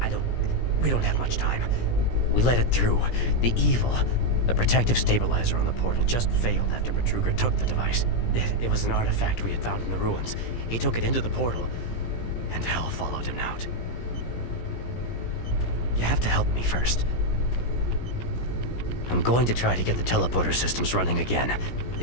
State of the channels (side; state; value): right; late; 17 ms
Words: we don't have much time. We let it through. The evil, the protective stabilizer on the portal just failed after Betruger took the device. It was an artifact we had found in the ruins. He took it into the portal, and hell followed him out. You have to help me first. I'm going to try to get the teleporter systems running again.